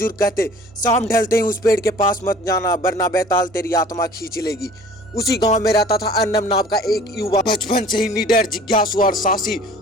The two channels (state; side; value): normal; both; correlation 0.48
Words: कहते, शाम ढलते ही उस पेड़ के पास मत जाना वरना बेताल तेरी आत्मा खींच लेगी। उसी गांव में रहता था अर्नब नाम का एक युवा। बचपन से ही निडर, जिज्ञासु और साहसी।